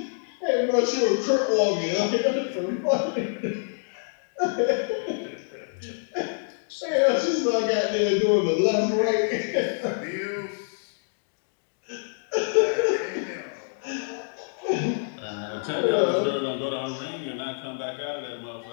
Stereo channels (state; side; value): silent; right; digital silence